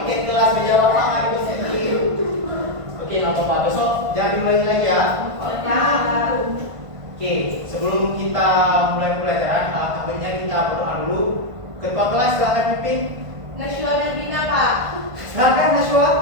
kelas meja bapak nggak dibersihin. Oke, nggak apa-apa. Besok jangan diulangi lagi ya. Oke, sebelum kita mulai pelajaran, takutnya kita berdoa dulu. Ketua kelas silakan pimpin. Nashwa dan Bina, Pak. Silakan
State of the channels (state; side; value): late; left; 1.5 ms